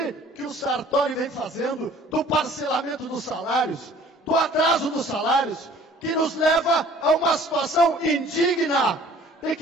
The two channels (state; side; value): normal; both; correlation 0.52